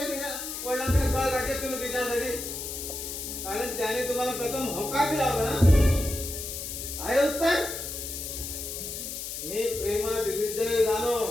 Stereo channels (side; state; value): left; noise; hiss, 6 dB below the sound